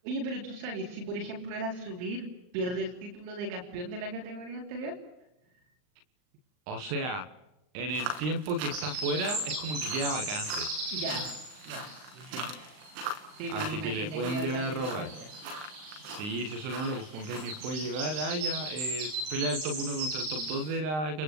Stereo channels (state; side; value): late; left; 39 ms